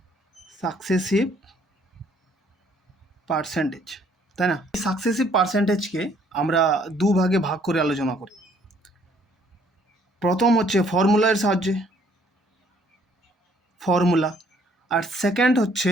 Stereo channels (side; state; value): both; normal; correlation 0.63